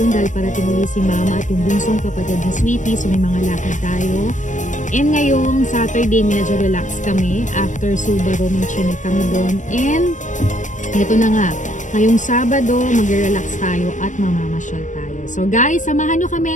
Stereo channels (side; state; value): right; late; 0.36 ms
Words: dahil parating ulit si Mama at yung bunsong kapatid ni Sweetie, so may mga lakad tayo. And ngayong Saturday, medyo relax kami. After Subaru, may chinek kami doon. And ito na nga, ngayong Sabado, mag-relax tayo at mamamasyal tayo. So guys, samahan nyo